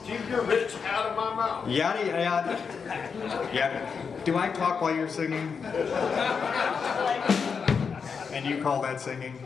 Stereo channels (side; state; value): right; quieter; 5.9 dB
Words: Keep your rich out of my mouth. Yada yada. Yeah. Do I talk while you're singing? And you call that singing?